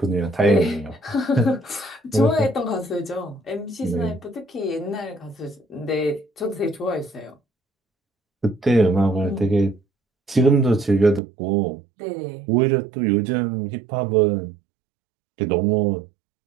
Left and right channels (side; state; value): left; drops out; at 11.2 s